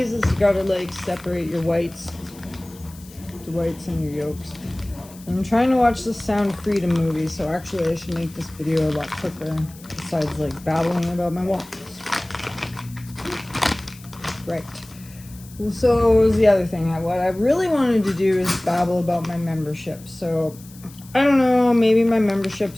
is you gotta like separate your whites, the whites and your yolks. I'm trying to watch the Sound Freedom movie, so actually I should make this video a lot quicker besides like babbling about my waffles. Right. Well, so what was the other thing? What I really wanted to do is babble about my membership. So, I don't know, maybe my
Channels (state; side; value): noise; left; hiss, 22 dB below the sound